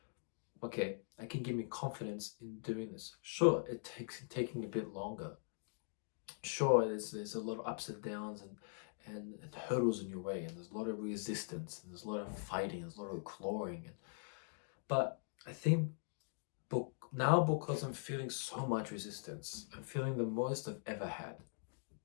okay, I can give me confidence in doing this. Sure, it takes taking a bit longer. Sure, there's a lot of ups and downs and hurdles in your way, and there's a lot of resistance, and there's a lot of fighting, there's a lot of clawing. But I think now, because I'm feeling so much resistance, I'm feeling the most I've ever had.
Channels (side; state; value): right; silent; digital silence